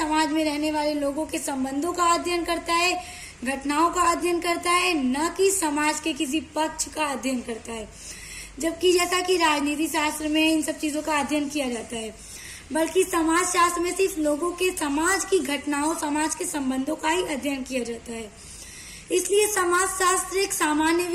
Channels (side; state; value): both; identical; correlation 1.00